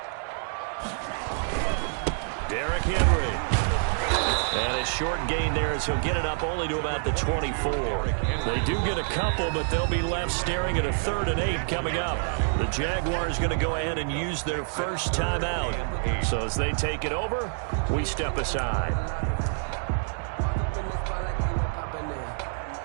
Derrick Henry. And a short gain there as he'll get it up only to about the 24. They do get a couple, but they'll be left staring at a 3rd and 8 coming up. The Jaguars going to go ahead and use their first timeout. So as they take it over, we step aside.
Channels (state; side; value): silent; left; 60 dB below the other